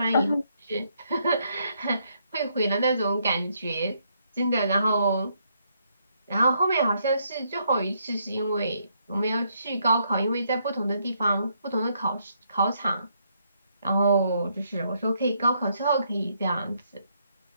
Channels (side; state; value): both; inverted; correlation -0.74